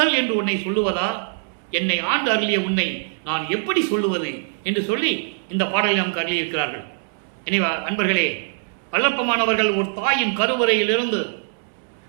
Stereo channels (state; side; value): silent; left; digital silence